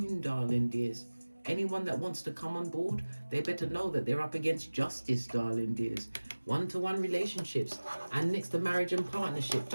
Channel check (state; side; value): inverted; both; correlation -1.00